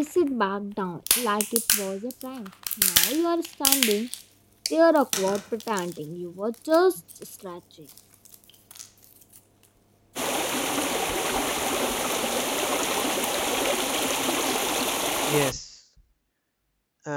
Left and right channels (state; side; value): identical; both; correlation 1.00